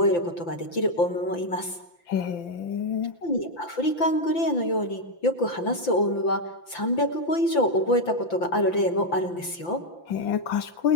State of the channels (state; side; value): late; right; 5.9 ms